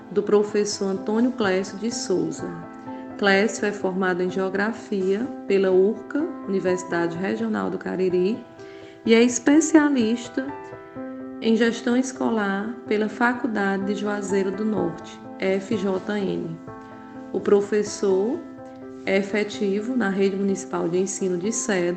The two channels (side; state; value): both; identical; correlation 1.00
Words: do professor Antônio Clécio de Souza. Clécio é formado em Geografia pela URCA, Universidade Regional do Cariri, e é especialista em Gestão Escolar pela Faculdade de Juazeiro do Norte, FJN. O professor é efetivo na Rede Municipal de Ensino de